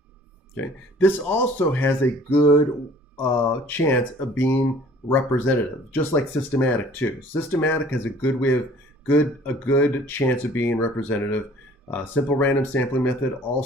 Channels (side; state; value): both; normal; correlation 0.52